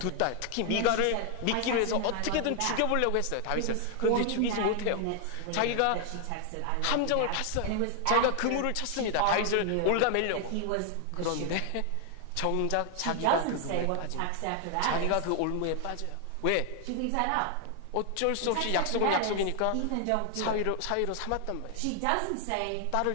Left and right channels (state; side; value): different; both; correlation 0.00